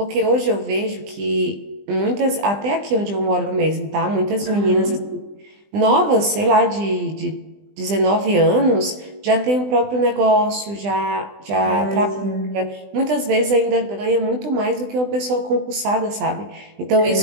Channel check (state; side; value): late; left; 20 ms